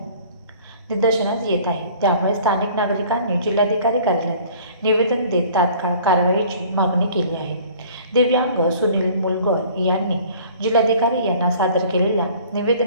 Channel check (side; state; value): both; inverted; correlation -0.50